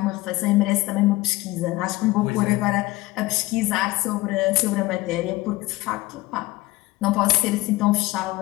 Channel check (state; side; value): quieter; right; 19.2 dB